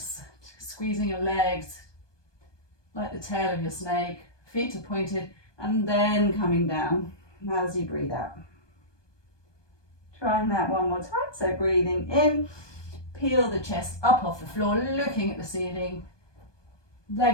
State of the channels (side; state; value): right; late; 1.2 ms